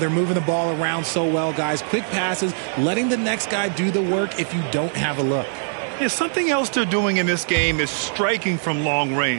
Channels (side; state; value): left; silent; digital silence